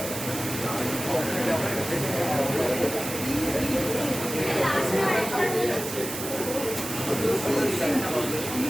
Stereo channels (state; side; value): noise; right; hiss, 7 dB below the sound